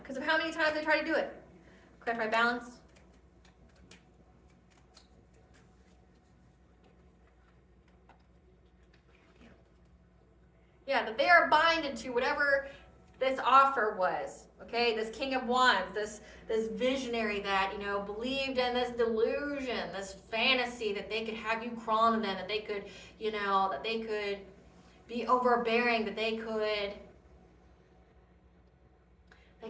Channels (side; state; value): both; identical; correlation 1.00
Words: because of how many times they try to do it. Clarify balance. Yeah, that they are binded to whatever this offer was, okay? This King of Wands, this visionary that, believed in this delusion, this fantasy that they could have you crawl to them, that they could, that they could be overbearing, that they could